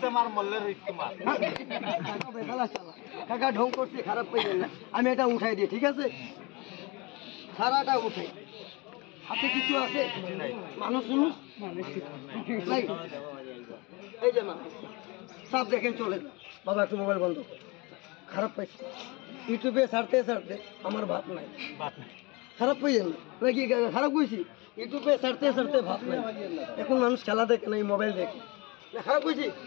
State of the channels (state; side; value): quieter; right; 26.4 dB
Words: কাকা ঢং করছে খারাপ পাইবেন না আমি এটা উঠাই দিই ঠিক আছে সারাটা উঠাই হাতে কিছু আছে মানুষ নাই এই যে মা সব দেখেন চলে বাবা একটু মোবাইল বন্ধ খারাপ পাইছে ইউটিউবে ছাড়তে আমার ভাত নাই খারাপ পাইছেন নাকি খারাপ কইছি ইউটিউবে ছাড়তে ভাত নাই এখন মানুষ খেলা দেখে না মোবাইল দেখে না খারাপ কইছি